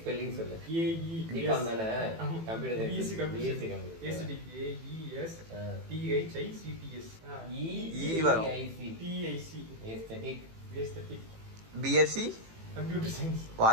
ஸ்பெல்லிங் சொல்லு. ஏஇ தீபம் தானே? கம்ப்யூட்டர் ஈஸி கம்ப்யூட்டர். ஏஸ்தட்டிக் ஏஇஎஸ் டிஹெச்ஐசிடிஎஸ் வரும். TIC aesthetic. Aesthetic BSc computer science.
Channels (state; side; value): late; left; 18 ms